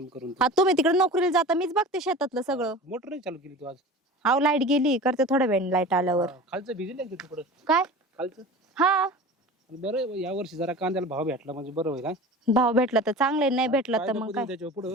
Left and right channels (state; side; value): normal; both; correlation 0.36